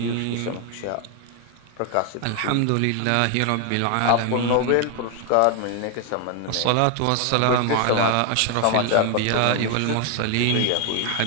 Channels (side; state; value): both; different; correlation 0.01